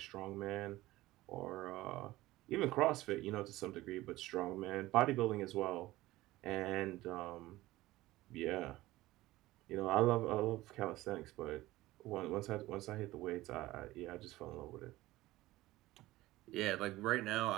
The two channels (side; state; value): left; quieter; 17.6 dB